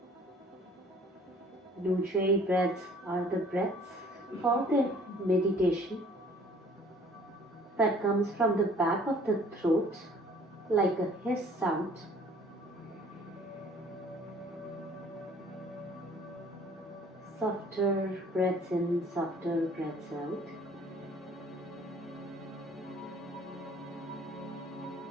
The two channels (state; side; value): normal; both; correlation 0.54